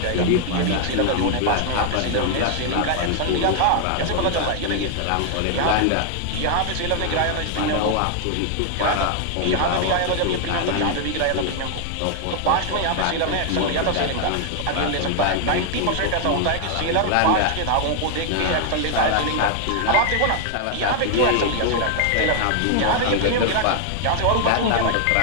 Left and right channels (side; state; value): both; different; correlation 0.00